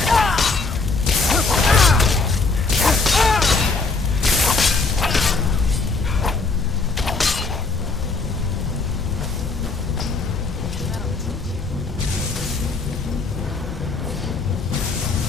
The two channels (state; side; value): quieter; right; 4.0 dB